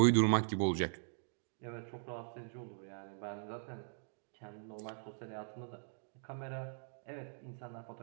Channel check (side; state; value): left; silent; digital silence